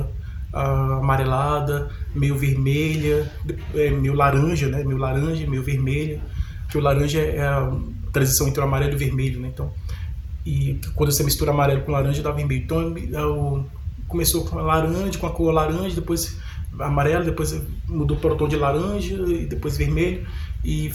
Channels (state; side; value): identical; both; correlation 1.00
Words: amarelada, meio vermelha, meio laranja, né? Meio vermelha, que o laranja é a transição entre o amarelo e o vermelho, né? Então, e quando você mistura amarelo com laranja dá vermelho. Então, começou com a cor laranja, depois amarelo, depois mudou para o tom de laranja e depois vermelho, e